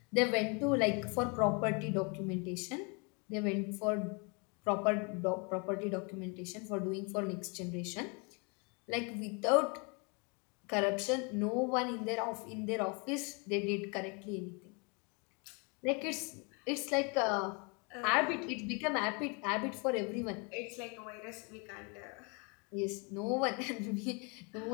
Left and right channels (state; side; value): quieter; right; 32.7 dB